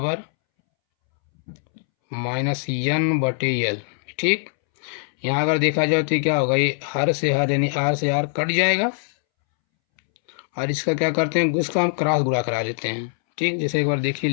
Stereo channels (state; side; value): silent; right; 64 dB below the other